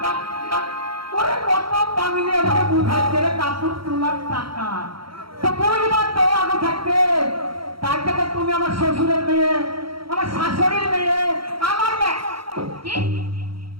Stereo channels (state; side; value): late; left; 0.75 ms